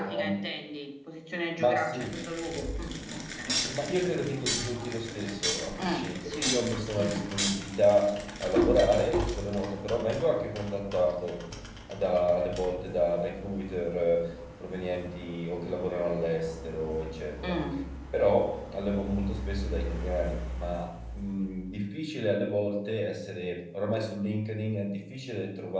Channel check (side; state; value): both; identical; correlation 1.00